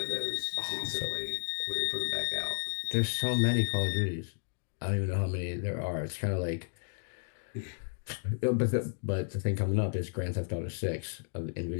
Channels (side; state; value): right; silent; digital silence